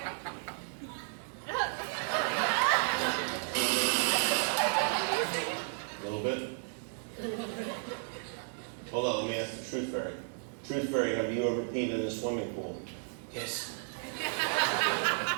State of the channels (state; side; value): silent; left; digital silence